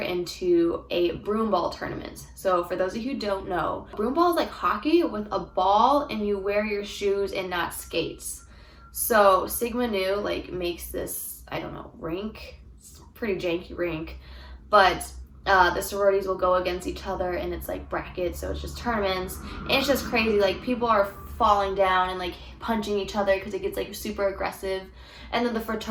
a broomball tournament. So for those of you who don't know, broomball is like hockey with a ball, and you wear your shoes and not skates. So Sigma Nu like makes this, I don't know, rink. It's a pretty janky rink. But the sororities will go against each other, and it's like brackets, so it's just tournaments. And it's just crazy, like people are falling down and like punching each other because it gets like super aggressive. And then the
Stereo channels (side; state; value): both; identical; correlation 1.00